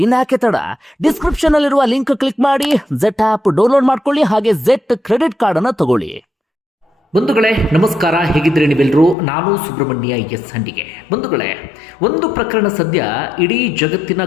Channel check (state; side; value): drops out; right; at 9.2 s